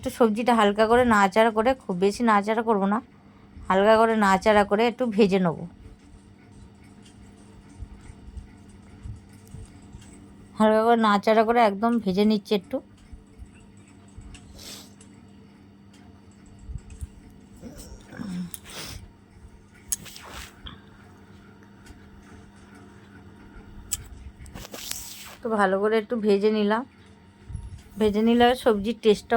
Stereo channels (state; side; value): identical; both; correlation 1.00